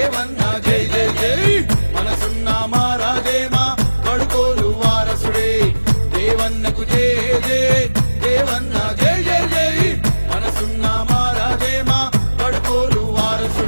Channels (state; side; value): inverted; both; correlation -1.00